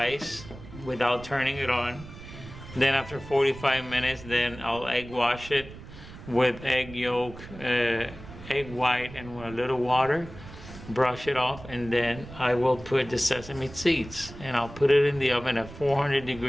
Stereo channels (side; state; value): right; noise; rumble, 15 dB below the sound